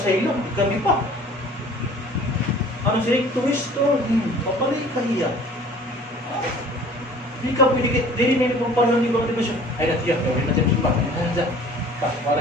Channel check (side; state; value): both; normal; correlation 0.49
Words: Kami pa. Ano siya? Tuwisto. Papalik ka hiya. Hindi ka pwede. Dili na yung pagpalahan di ba siya? Ay natiyak. Rin na siya simba.